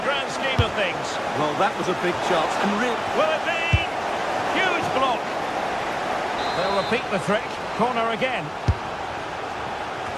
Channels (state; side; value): identical; both; correlation 1.00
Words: grand scheme of things? Well, that was a big chance. And will it be? Huge block. They'll repeat the trick. Corner again.